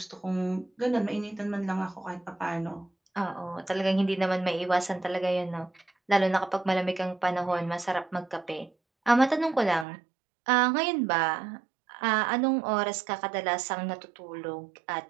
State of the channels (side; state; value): left; drops out; at 9.9 s